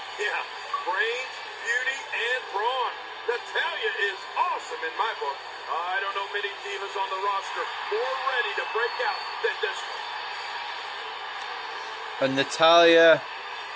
Yeah, brains, beauty, and brawn. Natalya is awesome in my book. I don't know many divas on the roster more ready to break out than this one. And Natalya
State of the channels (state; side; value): identical; both; correlation 1.00